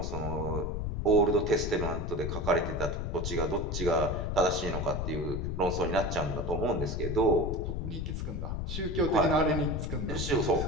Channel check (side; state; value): left; noise; rumble, 3 dB below the sound